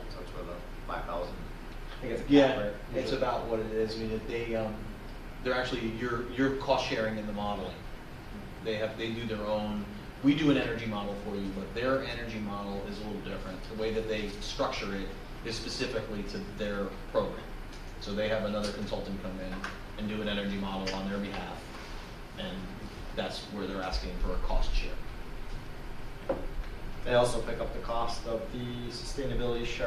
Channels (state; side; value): identical; both; correlation 1.00